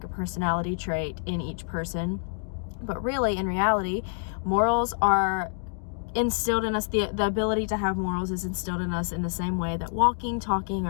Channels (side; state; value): right; silent; digital silence